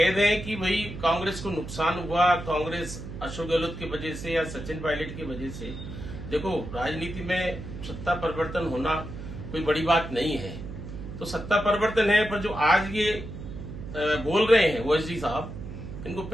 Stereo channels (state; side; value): noise; right; hum, 10 dB below the sound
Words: दें कि भाई कांग्रेस को नुकसान हुआ, कांग्रेस अशोक गहलोत की वजह से या सचिन पायलट की वजह से। देखो राजनीति में सत्ता परिवर्तन होना कोई बड़ी बात नहीं है, तो सत्ता परिवर्तन है। पर जो आज ये बोल रहे हैं ओएसडी साहब, इनको